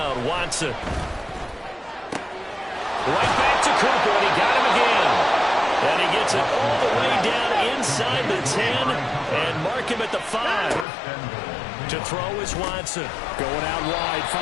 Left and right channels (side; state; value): right; drops out; at 10.9 s